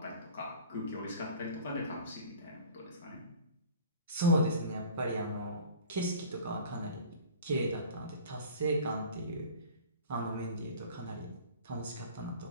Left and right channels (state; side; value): inverted; both; correlation -0.42